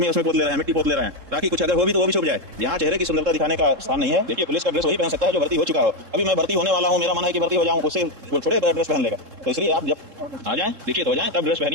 उसमें पोत ले रहे हैं, मिट्टी पोत ले रहे हैं, ताकि कुछ अगर हो भी तो वो भी छुप जाए। यहाँ चेहरे की सुंदरता दिखाने का स्थान नहीं है। देखिए, पुलिस का ड्रेस वही पहन सकता है जो भर्ती हो चुका हो। अभी मैं भर्ती होने वाला हूँ, मेरा मन है कि भर्ती हो जाऊँ, उससे थोड़े ड्रेस पहन लेगा। तो इसलिए आप जब आ जाएं, दीक्षित हो जाएं, तब ड्रेस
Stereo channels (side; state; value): left; late; 3.7 ms